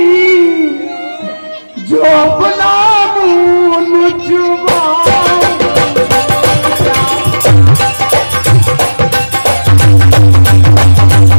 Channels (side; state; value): both; inverted; correlation -1.00